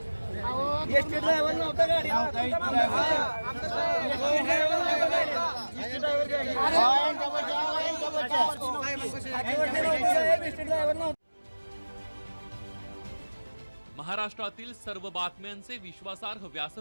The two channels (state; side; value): inverted; both; correlation -1.00